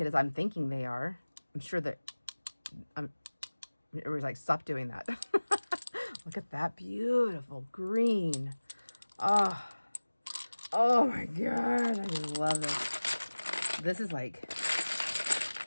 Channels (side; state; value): both; inverted; correlation -1.00